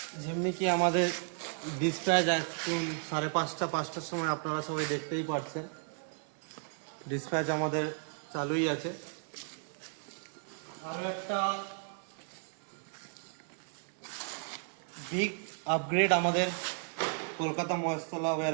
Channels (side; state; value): left; silent; 55 dB below the other